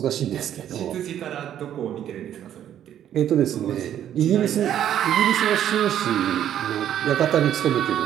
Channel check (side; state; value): left; quieter; 10.7 dB